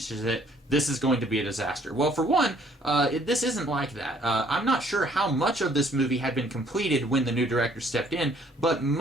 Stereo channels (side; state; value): both; normal; correlation 0.61